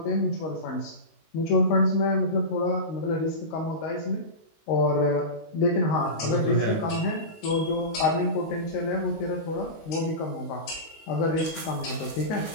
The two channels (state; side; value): late; right; 19 ms